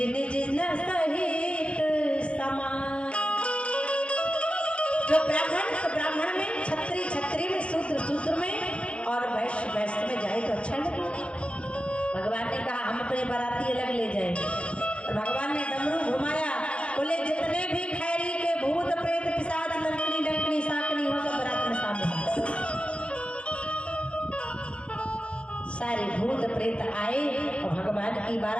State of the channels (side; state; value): right; late; 0.060 ms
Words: निज न सहित समान। जो ब्राह्मण में, छत्री में, सूत्र में और वैश्य में जाए तो अच्छा लगे। भगवान ने कहा हम अपने बाराती अलग ले जाए, और भगवान ने डमरू घुमाया, बोले जितने भी खैरी के भूत प्रेत पिशाच लंकनी डंकनी साकनी हो सब बारात में सामने। सारे भूत प्रेत आए और भगवान की